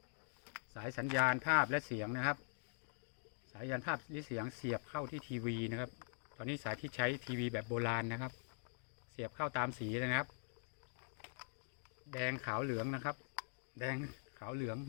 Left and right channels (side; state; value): right; silent; digital silence